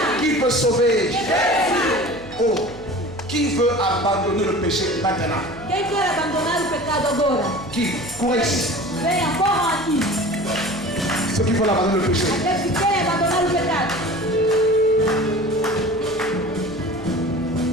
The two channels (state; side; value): noise; right; hum, 19 dB below the sound